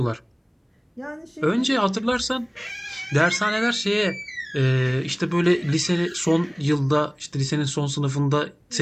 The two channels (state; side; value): identical; both; correlation 1.00